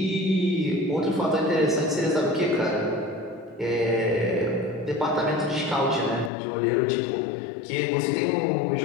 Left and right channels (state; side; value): drops out; right; at 6.3 s